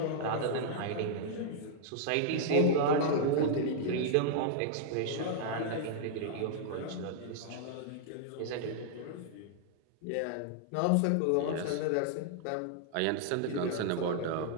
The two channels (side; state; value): both; different; correlation -0.01